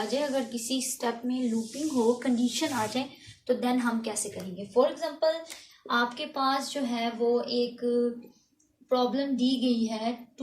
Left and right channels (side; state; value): both; identical; correlation 1.00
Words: जाए। अगर किसी स्टेप में लूपिंग हो, कंडीशन आ जाए, तो देन हम कैसे करेंगे। फॉर एग्जांपल आपके पास जो है वो एक प्रॉब्लम दी गई है,